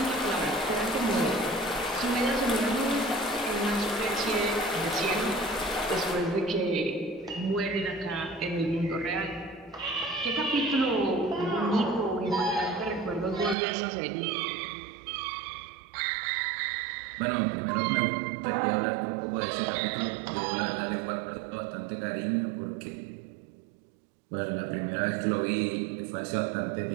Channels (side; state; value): left; drops out; at 13.6 s